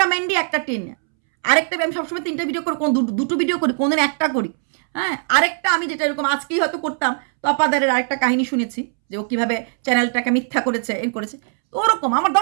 ম্যান্ডি একটা টিনা। আরেকটা আমি সবসময় 3টে ভিডিও করি, কোন 2টো ভিডিও করি, কোনদিন একটা করি। হ্যাঁ, আরেকটা আমি যেটা এরকম আজকেই হয়তো করতাম, তপাদারের আরেকটা কাহিনী শুনেছি যে ও কীভাবে চ্যানেলটাকে মিথ্যা করেছে, করেছে। তো ওরকম আমার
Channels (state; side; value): silent; left; 66 dB below the other